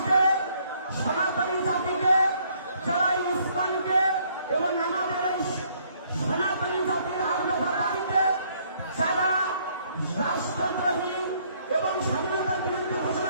সনাতনী জাতিকে, যারা ইসলামকে এবং আমাদের এই সনাতনী জাতির আগ্রহ দাবিকে যারা রাষ্ট্রদ্রোহী এবং স্বাধীনতার বিরুদ্ধে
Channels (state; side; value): inverted; both; correlation -0.66